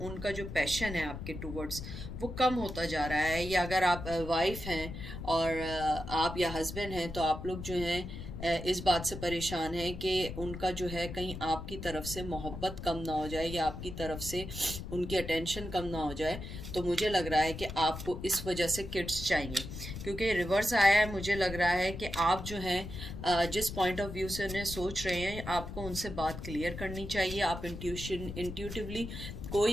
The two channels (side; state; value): left; noise; rumble, 9 dB below the sound